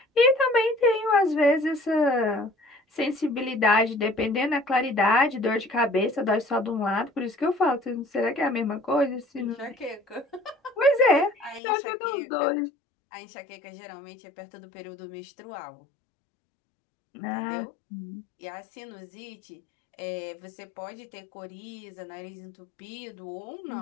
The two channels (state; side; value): drops out; right; at 11.6 s